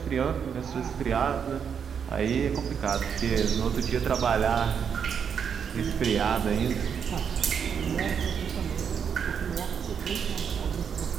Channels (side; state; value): left; quieter; 7.2 dB